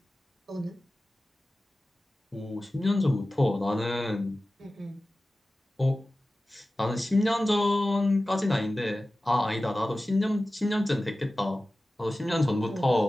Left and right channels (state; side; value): normal; both; correlation 0.96